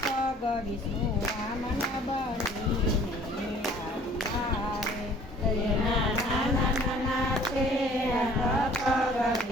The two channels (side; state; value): both; normal; correlation 0.53